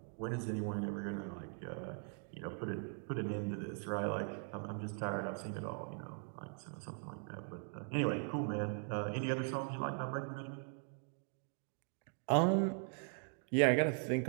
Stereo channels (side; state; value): left; silent; 51 dB below the other